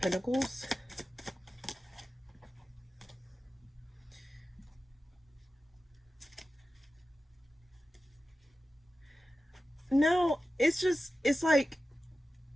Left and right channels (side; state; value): both; normal; correlation 0.93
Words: No, it's like,